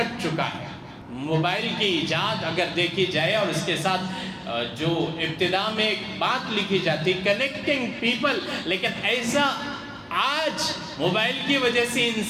چکا ہے۔ موبائل کی ایجاد اگر دیکھی جائے اور اس کے ساتھ جو ابتدا میں ایک بات لکھی جاتی کنیکٹنگ پیپل، لیکن ایسا آج موبائل کی وجہ سے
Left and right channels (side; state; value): both; identical; correlation 1.00